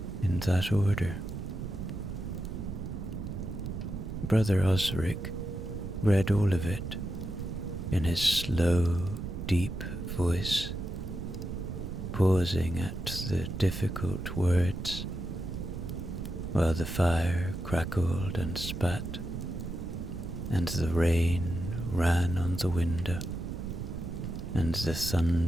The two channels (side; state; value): right; noise; rumble, 6 dB below the sound